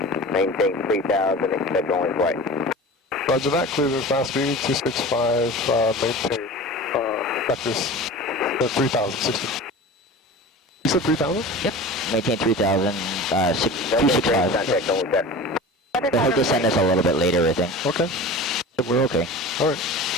Maintain 3,000, expect only flight. Roger that, clear to Class B, 265, maintain, vectors, 3,060. You said 3,000? Yep. Maintain 3,000, 265. Contact only set. He'll just send us a little bit later, I think. Okay. So we're okay. Alright.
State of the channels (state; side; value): normal; both; correlation 0.35